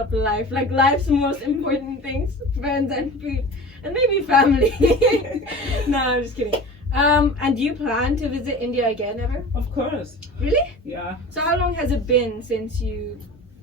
life. Like life's most important things: friends and food, and maybe family. No, I'm just kidding. And do you plan to visit India again ever? Of course. Really? Yeah. So how long has it been since you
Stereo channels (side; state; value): both; normal; correlation 0.36